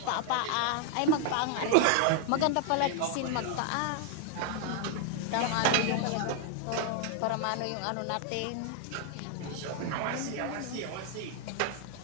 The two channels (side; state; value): both; different; correlation 0.00